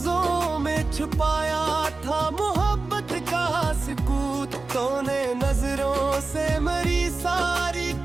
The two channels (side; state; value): left; quieter; 3.7 dB